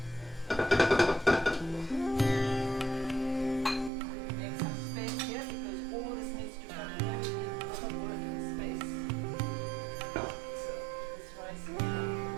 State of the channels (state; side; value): drops out; left; at 3.9 s